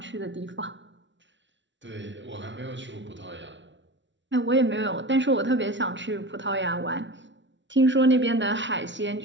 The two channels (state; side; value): late; left; 0.54 ms